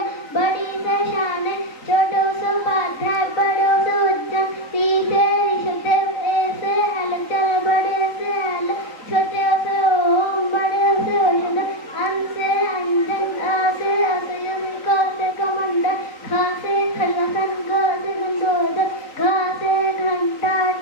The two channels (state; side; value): late; right; 3.9 ms